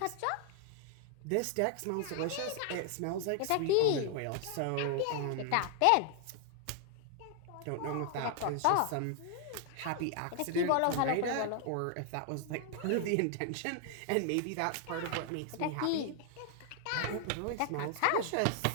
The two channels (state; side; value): different; both; correlation 0.00